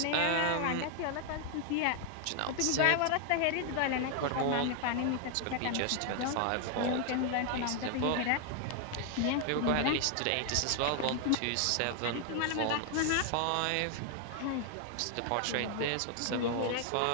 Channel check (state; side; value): different; both; correlation 0.00